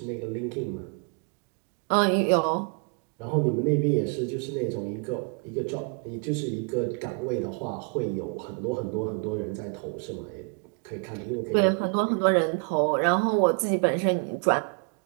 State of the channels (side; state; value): left; quieter; 38.8 dB